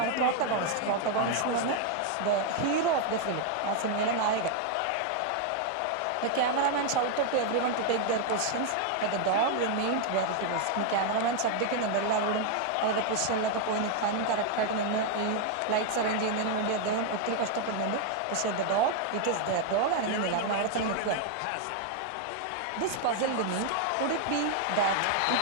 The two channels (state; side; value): different; both; correlation 0.00